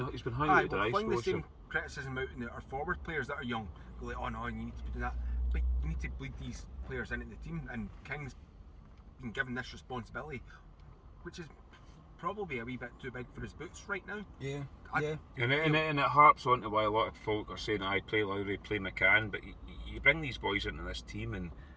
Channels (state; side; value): identical; both; correlation 1.00